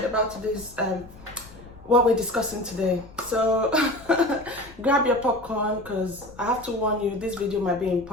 about today's what we're discussing today. So grab your popcorn because I have to warn you, this video might be in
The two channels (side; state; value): left; noise; rumble, 20 dB below the sound